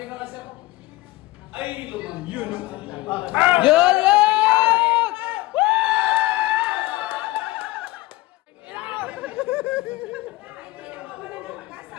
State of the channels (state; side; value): quieter; right; 18.8 dB